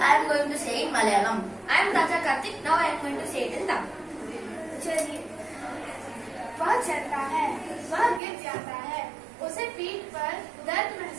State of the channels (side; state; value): left; drops out; at 8.2 s